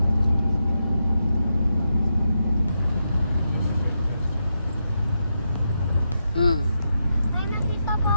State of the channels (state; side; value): inverted; both; correlation -0.85